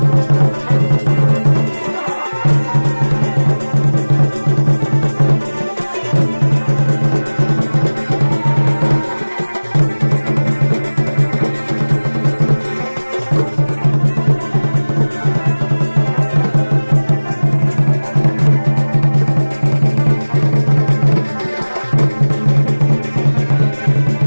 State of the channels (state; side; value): inverted; both; correlation -1.00